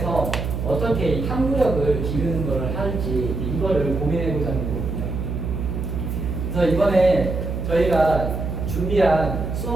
어떻게 이 탐구력을 기르는 것을 할지 이거를 고민해보자는 거거든요. 그래서 이번에 저희가 준비한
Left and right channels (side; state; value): right; noise; hum, 3 dB below the sound